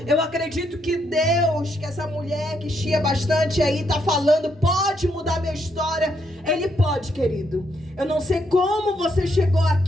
Eu acredito que Deus, que essa mulher que chia bastante aí está falando, pode mudar minha história. Ele pode, querido. Eu não sei como você chegou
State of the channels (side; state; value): both; normal; correlation 0.76